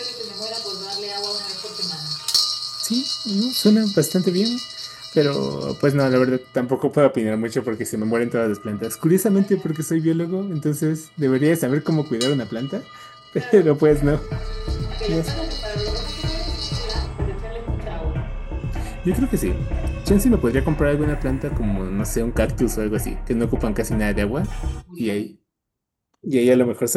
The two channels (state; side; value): identical; both; correlation 1.00